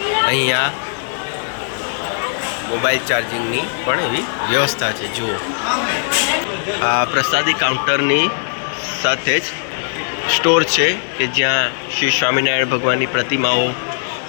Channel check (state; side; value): silent; right; digital silence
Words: અહીંયા મોબાઈલ ચાર્જિંગની પણ એવી વ્યવસ્થા છે. જુઓ, આ પ્રસાદી કાઉન્ટરની સાથે જ સ્ટોર છે કે જ્યાં શ્રી સ્વામિનારાયણ ભગવાનની પ્રતિમાઓ,